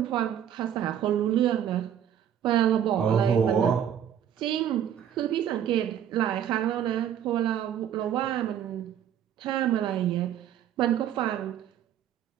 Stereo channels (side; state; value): left; quieter; 9.8 dB